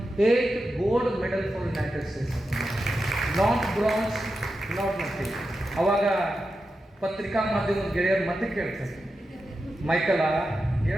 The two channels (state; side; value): normal; both; correlation 0.89